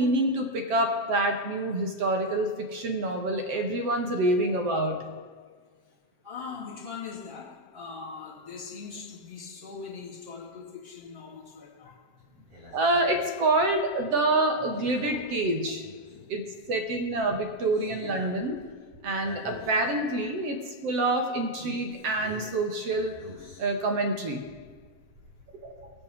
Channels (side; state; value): left; late; 7.6 ms